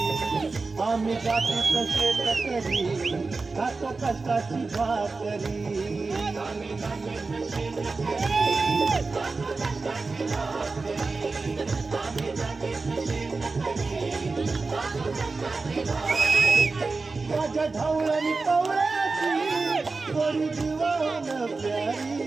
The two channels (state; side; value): quieter; left; 3.9 dB